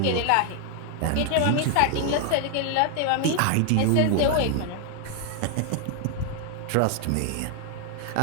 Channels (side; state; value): both; different; correlation 0.00